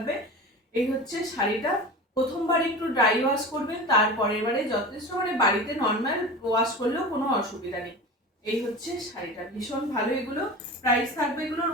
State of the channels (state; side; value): normal; both; correlation 0.32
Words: এই হচ্ছে শাড়িটা। প্রথমবার একটু ড্রাই ওয়াশ করবেন, তারপরের বারে যথেষ্ট বাড়িতে নর্মাল ওয়াশ করলেও কোনো অসুবিধা নেই। এই হচ্ছে শাড়িটা, ভীষণ ভালো। এগুলো প্রাইস থাকবে এগুলোর